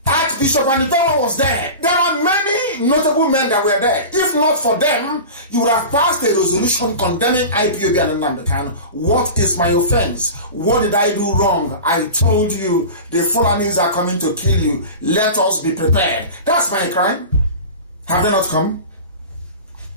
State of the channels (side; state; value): both; inverted; correlation -0.31